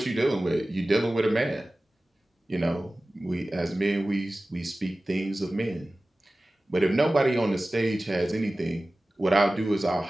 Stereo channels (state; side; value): normal; both; correlation 0.97